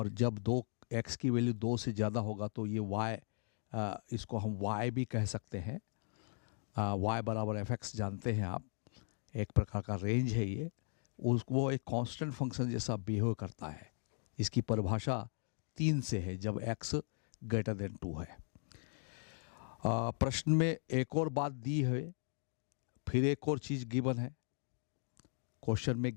जब x की वैल्यू 2 से ज़्यादा होगा तो ये y, इसको हम y भी कह सकते हैं। y बराबर एफ एक्स जानते हैं आप, एक प्रकार का रेंज है ये, वो एक कांस्टेंट फंक्शन जैसा बिहेव करता है। इसकी परिभाषा 3 से है जब x ग्रेटर देन 2 है। प्रश्न में एक और बात दी है, फिर एक और चीज़ गिवन है। क्वेश्चन में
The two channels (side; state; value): right; silent; 52 dB below the other